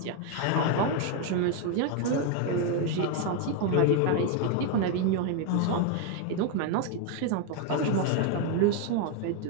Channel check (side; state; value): both; different; correlation 0.01